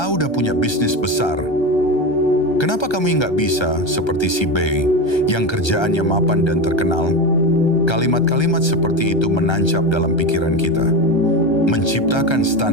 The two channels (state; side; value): late; right; 1.3 ms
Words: udah punya bisnis besar. Kenapa kamu nggak bisa seperti si B yang kerjaannya mapan dan terkenal? Kalimat-kalimat seperti itu menancap dalam pikiran kita, menciptakan